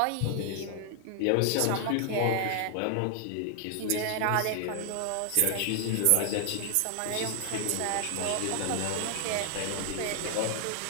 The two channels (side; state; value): both; different; correlation 0.00